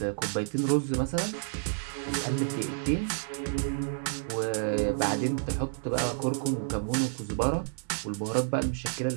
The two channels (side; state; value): left; silent; 58 dB below the other